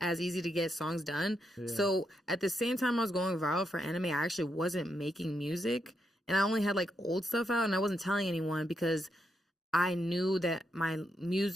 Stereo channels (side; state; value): both; normal; correlation 0.81